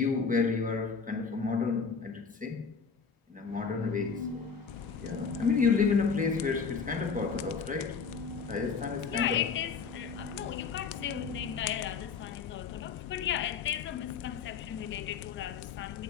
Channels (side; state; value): right; quieter; 5.6 dB